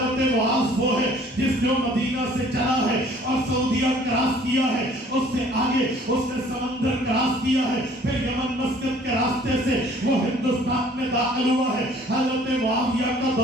معاذ وہ ہے جس نے مدینہ سے چلا ہے اور سعودیہ کراس کیا ہے، اس سے آگے اس نے سمندر کراس کیا ہے، پھر یمن مسقط کے راستے سے وہ ہندوستان میں داخل ہوا ہے. حضرت معاویہ کا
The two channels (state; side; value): normal; both; correlation 0.55